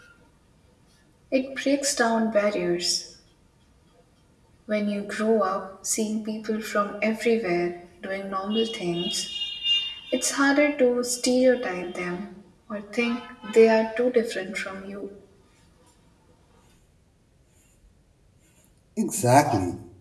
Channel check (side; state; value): both; identical; correlation 1.00